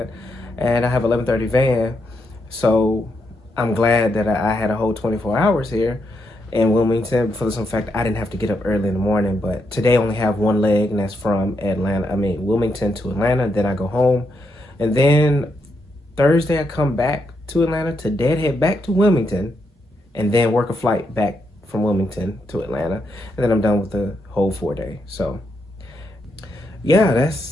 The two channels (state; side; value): normal; both; correlation 0.80